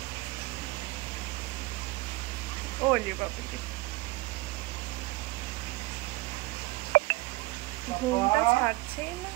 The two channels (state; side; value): quieter; left; 21.2 dB